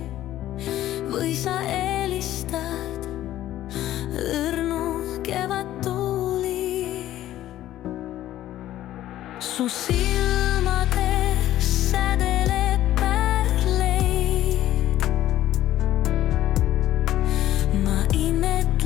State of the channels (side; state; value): right; quieter; 13.5 dB